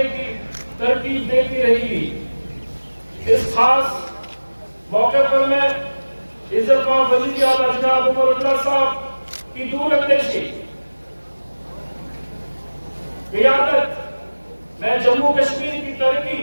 की तरकीब देती रहेगी। इस खास मौके पर मैं इज़्ज़तमान वज़ीर आला जनाब उमर अब्दुल्ला साहब की दूरअंदेशी, क़ियादत में जम्मू कश्मीर की तरक्की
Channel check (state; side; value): inverted; both; correlation -1.00